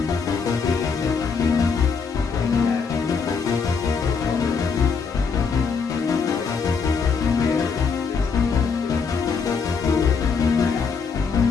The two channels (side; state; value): right; quieter; 5.5 dB